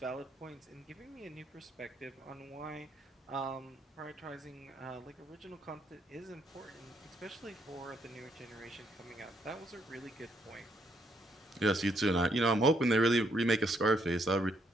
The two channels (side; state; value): both; normal; correlation 0.73